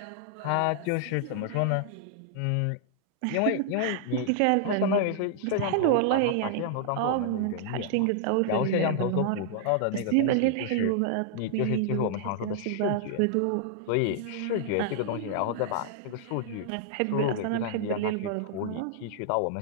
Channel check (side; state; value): both; different; correlation -0.01